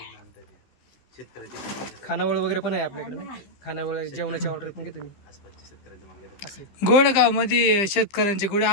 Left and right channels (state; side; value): late; right; 15 ms